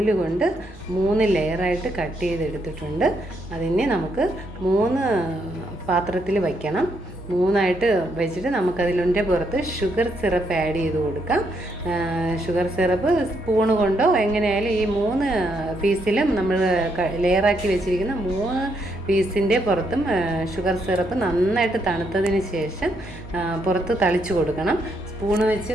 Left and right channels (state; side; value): normal; both; correlation 0.76